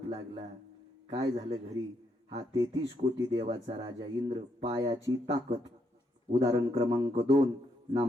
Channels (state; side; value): normal; both; correlation 0.77